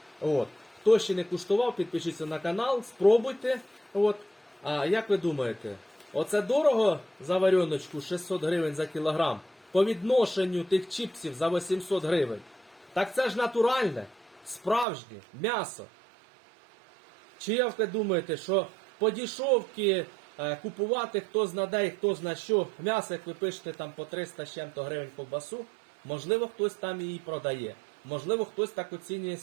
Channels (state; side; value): drops out; left; at 14.9 s